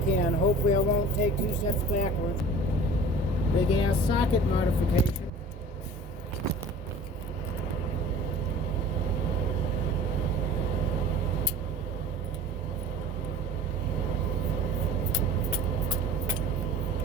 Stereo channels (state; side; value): normal; both; correlation 0.42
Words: Hopefully I won't take 2 steps backwards. Big ass socket modification.